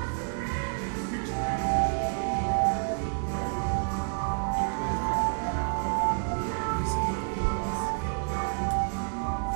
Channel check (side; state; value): left; silent; digital silence